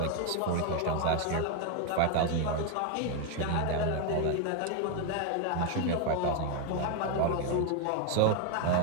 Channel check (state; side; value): different; both; correlation 0.01